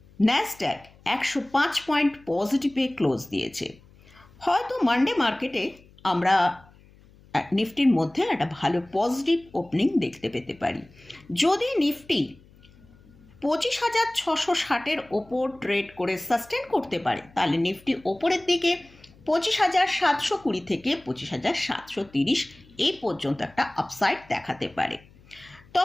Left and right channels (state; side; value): noise; left; hum, 26 dB below the sound